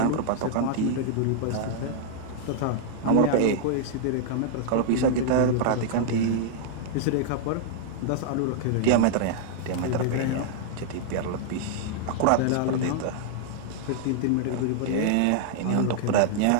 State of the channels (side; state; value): both; different; correlation -0.01